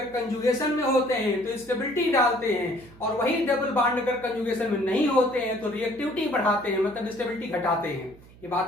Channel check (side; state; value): right; noise; hum, 23 dB below the sound